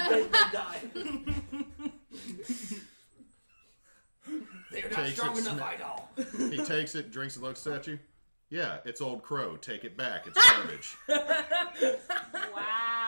They're not Takes strong it, enough, sma- Idall. He takes it, drinks it, looks at you. Yeah, it's Old Crow. Take it back. It's garbage.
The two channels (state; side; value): inverted; both; correlation -1.00